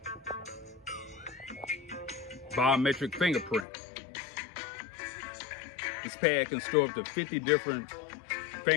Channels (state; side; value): drops out; right; at 3.7 s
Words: biometric fingerprint. This pad can store up to 50 different